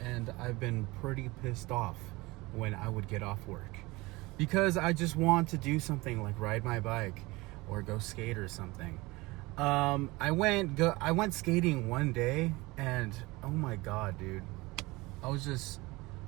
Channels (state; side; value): quieter; left; 22.3 dB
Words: I've been pretty pissed off when I would get off work because I just want to do something like ride my bike or go skate or something. I went skating one day, and oh my god, dude, I was just